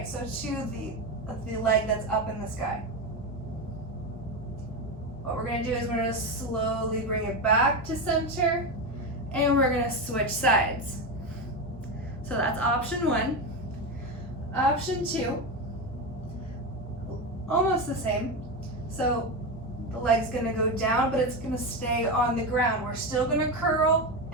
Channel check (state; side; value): normal; both; correlation 0.16